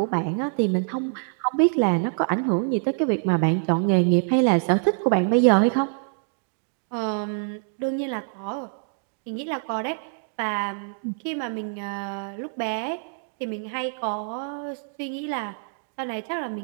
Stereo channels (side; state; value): left; silent; digital silence